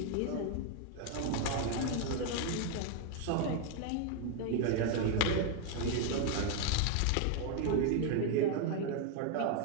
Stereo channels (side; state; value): both; different; correlation 0.01